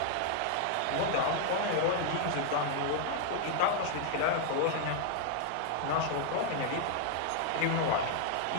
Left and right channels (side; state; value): both; different; correlation -0.01